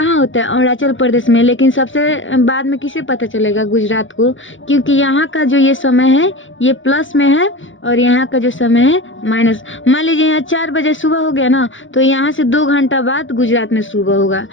होता है, अरुणाचल प्रदेश में, लेकिन सबसे बाद में किसे पता चलेगा, गुजरात को, क्योंकि यहाँ का जो ये समय है ये प्लस में है और यहाँ का जो समय है माइनस। मान लीजिए यहाँ 4 बजे सुबह हो गया ना, तो यहाँ से 2 घंटा बाद गुजरात में सुबह होगा,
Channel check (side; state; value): right; late; 0.56 ms